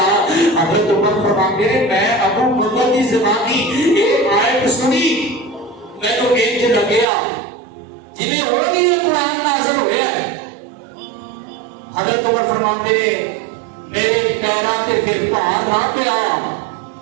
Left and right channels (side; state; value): left; drops out; at 7.1 s